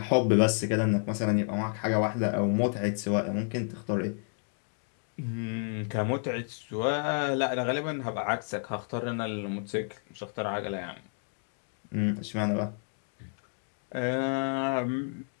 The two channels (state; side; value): silent; right; 57 dB below the other